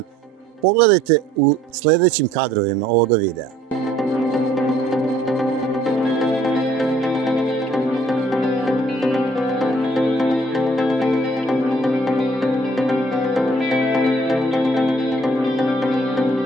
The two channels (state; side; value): normal; both; correlation 0.60